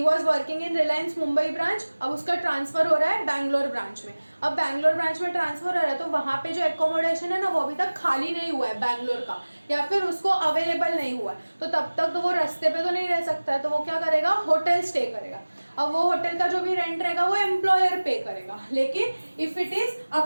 was working in Reliance Mumbai branch, अब उसका ट्रांसफर हो रहा है बैंगलोर ब्रांच में। अब बैंगलोर ब्रांच में ट्रांसफर हो रहा है तो वहां पे जो एकोमोडेशन है ना, वो अभी तक खाली नहीं हुआ है बैंगलोर का, या फिर उसको अवेलेबल नहीं हुआ है, तो तब तक तो वो रास्ते पे तो नहीं रह सकता है, तो वो क्या करेगा? होटल स्टे करेगा। अब वो होटल का जो भी रेंट रहेगा वो एम्प्लॉयर पे करेगा, लेकिन if it is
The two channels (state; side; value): inverted; both; correlation -1.00